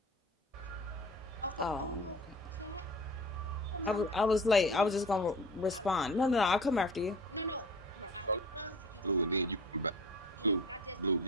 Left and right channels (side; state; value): both; normal; correlation 0.39